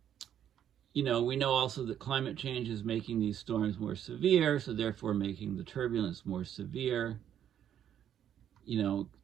we know also that climate change is making these storms more severe, so therefore making the turbulence more severe.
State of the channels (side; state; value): left; quieter; 9.9 dB